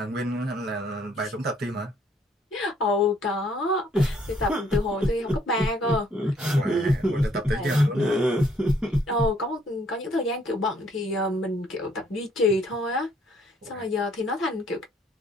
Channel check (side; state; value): both; normal; correlation 0.65